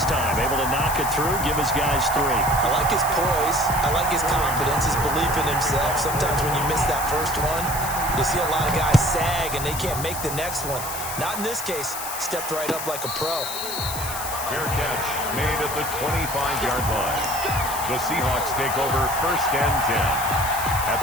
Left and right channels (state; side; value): noise; left; hiss, 7 dB below the sound